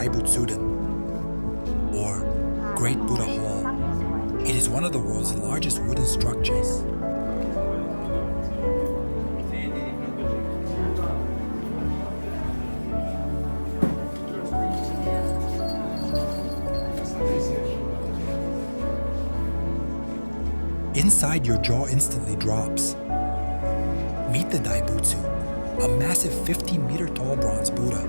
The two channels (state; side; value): inverted; both; correlation -1.00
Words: or Great Buddha Hall. It is one of the world's largest wooden structures. Inside, your jaw instantly drops. Meet the Daibutsu, a massive 15-meter-tall bronze Buddha.